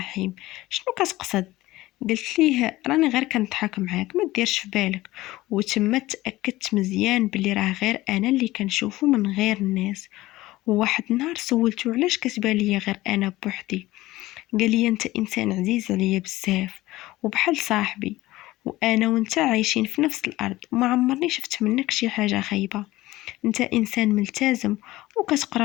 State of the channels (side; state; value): right; quieter; 17.7 dB